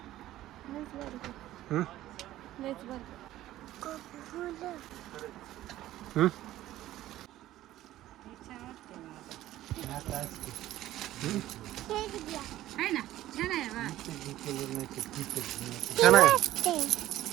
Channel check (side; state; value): left; quieter; 14.4 dB